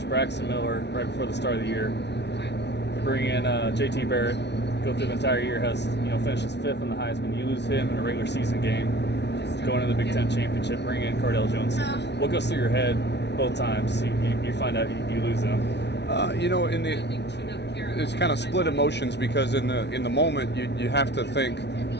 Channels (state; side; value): late; right; 0.50 ms